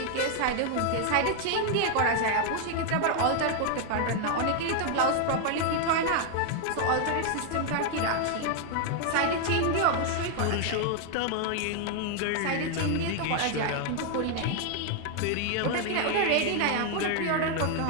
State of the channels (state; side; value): different; both; correlation 0.00